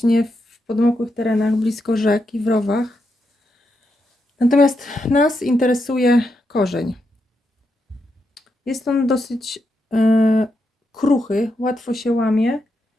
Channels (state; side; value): normal; both; correlation 0.84